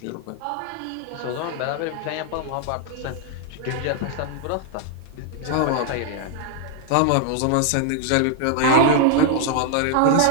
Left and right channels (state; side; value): different; both; correlation 0.00